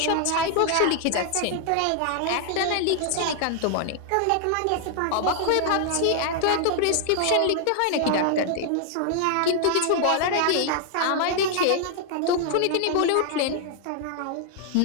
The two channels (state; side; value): different; both; correlation 0.00